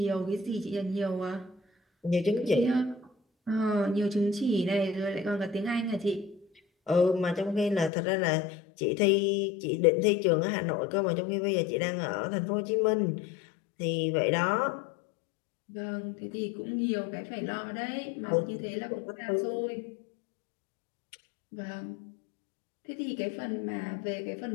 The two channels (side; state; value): right; drops out; at 7.9 s